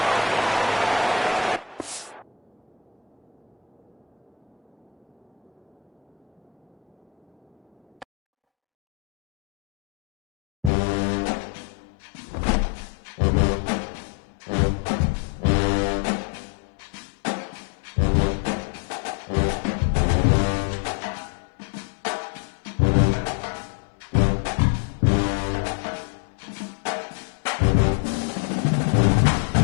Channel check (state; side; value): drops out; right; at 10.7 s